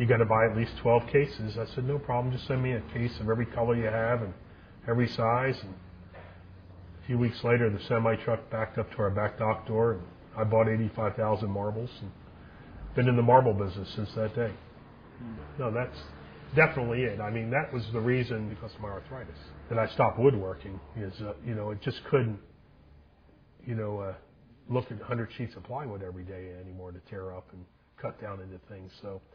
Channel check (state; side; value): identical; both; correlation 1.00